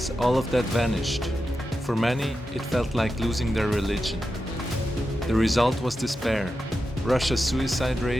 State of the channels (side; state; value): both; normal; correlation 0.90